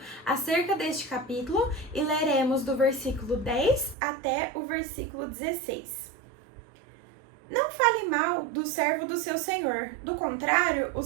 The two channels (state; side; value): drops out; left; at 4.0 s